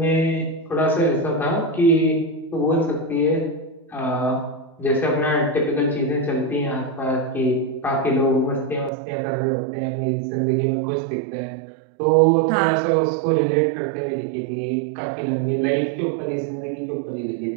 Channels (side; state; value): left; drops out; at 8.9 s